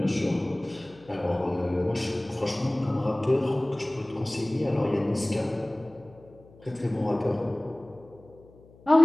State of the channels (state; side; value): noise; left; hum, 25 dB below the sound